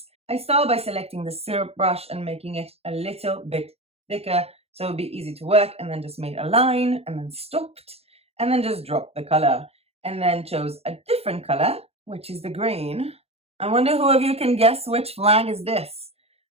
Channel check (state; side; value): late; left; 0.29 ms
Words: I started by selecting the syrup brush and making it a little bit thicker so it would be easy to work, and then just made a line and then stopped, and then just dropped the color, and then chose a different color, which is the green. I wonder who of you can guess which flag is this.